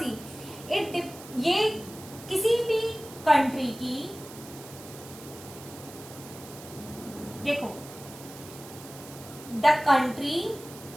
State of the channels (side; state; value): right; noise; hiss, 16 dB below the sound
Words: ये किसी भी कंट्री की, देखो, the country